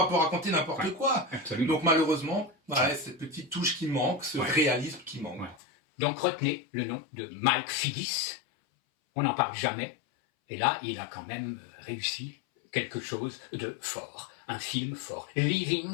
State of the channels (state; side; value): drops out; right; at 5.6 s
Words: pas raconter n'importe quoi. Absolument. Donc malheureusement, cette petite touche qui manque, ce réalisme qui manque. Ouais. Donc retenez le nom de Mike Figgis. On n'en parle jamais. Et là, il a quand même réussi quelque chose de fort. Un film fort.